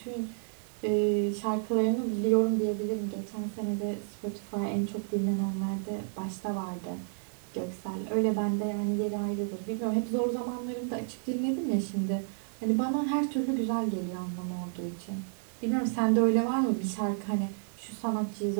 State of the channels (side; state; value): left; silent; digital silence